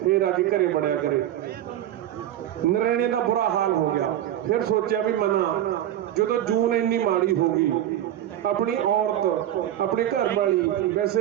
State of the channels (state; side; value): quieter; left; 12.1 dB